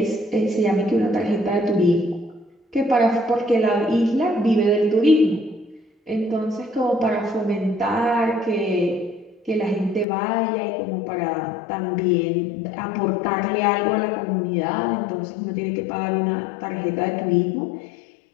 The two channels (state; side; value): drops out; right; at 10.1 s